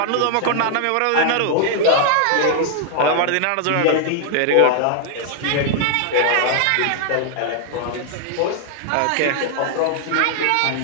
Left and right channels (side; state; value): both; different; correlation 0.00